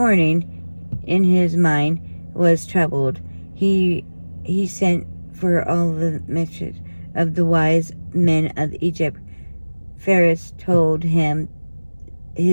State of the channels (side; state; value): both; inverted; correlation -1.00